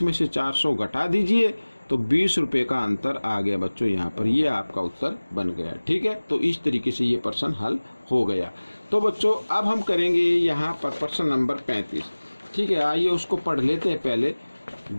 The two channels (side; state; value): both; inverted; correlation -1.00